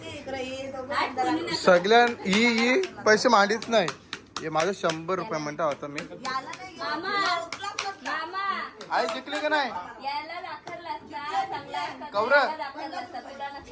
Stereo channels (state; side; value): identical; both; correlation 1.00